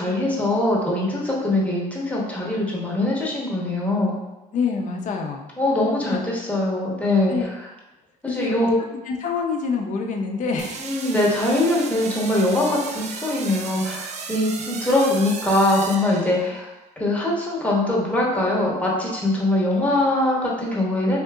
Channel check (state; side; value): normal; both; correlation 0.56